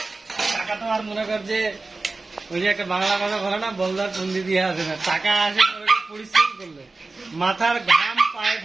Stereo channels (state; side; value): quieter; left; 3.6 dB